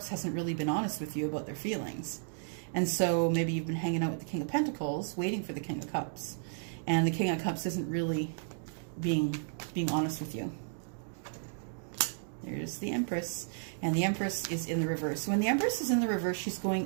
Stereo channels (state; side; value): silent; left; digital silence